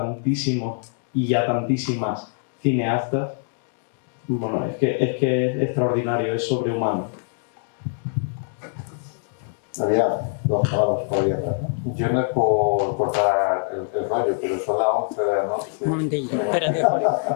y a tantísimas cineastas, bueno, es que es extraordinario, es sobrehumano. Había dos palabras por ahí atrás, ¿no? Yo no es por cortar el rollo, pero son las 11 de la noche. Un momentillo, espérate, Jorge.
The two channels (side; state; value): right; silent; digital silence